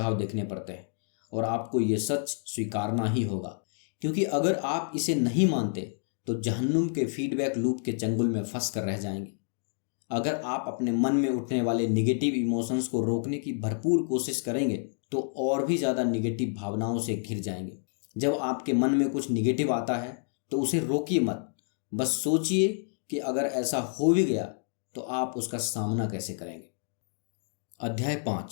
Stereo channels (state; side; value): silent; right; digital silence